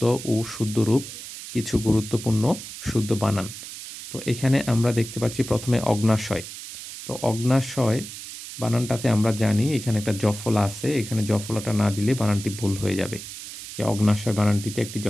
ও শুদ্ধ রূপ, কিছু গুরুত্বপূর্ণ শুদ্ধ বানান। তো এখানে আমরা দেখতে পাচ্ছি প্রথমে অগ্ন্যাশয়। তো অগ্ন্যাশয় বানানটাতে আমরা জানি এখানে একটা জফলা আছে, এখানে জফলাটা না দিলে বানানটি ভুল হয়ে যাবে। যে অগ্ন্যাশয় বানানটিতে একটি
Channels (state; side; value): noise; right; hiss, 11 dB below the sound